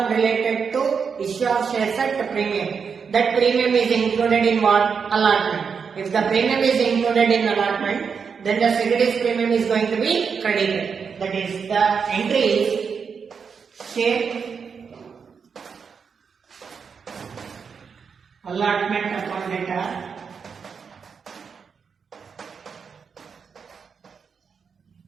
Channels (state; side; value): quieter; left; 6.1 dB